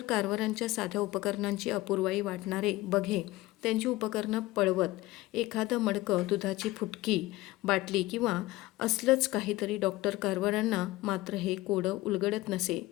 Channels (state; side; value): quieter; right; 18.5 dB